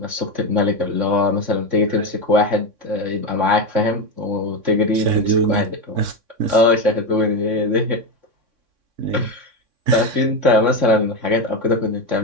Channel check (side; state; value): left; late; 3.6 ms